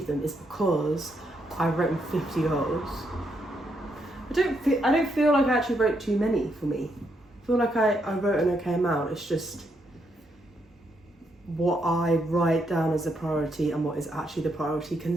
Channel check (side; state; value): both; normal; correlation 0.78